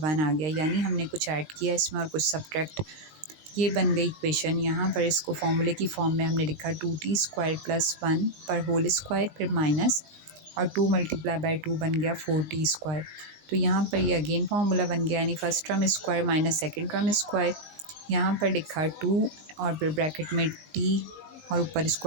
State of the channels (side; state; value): left; late; 19 ms